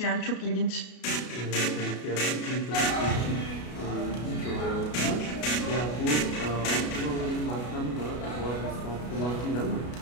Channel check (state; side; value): late; right; 33 ms